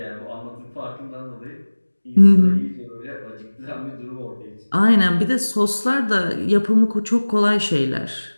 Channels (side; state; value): both; inverted; correlation -1.00